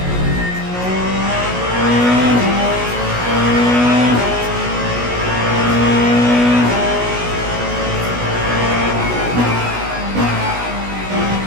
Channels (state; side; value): late; left; 16 ms